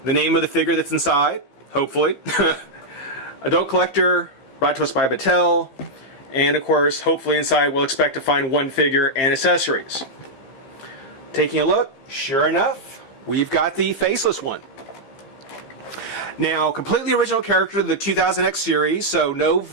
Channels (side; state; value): right; late; 15 ms